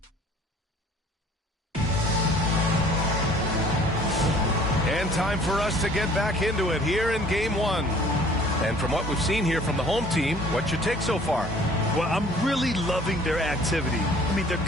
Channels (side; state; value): both; normal; correlation 0.53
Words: Time for us to get back into it here in game 1. And from what we've seen here from the home team, what's your take so far? Well, I'm really loving their activity. I mean, they're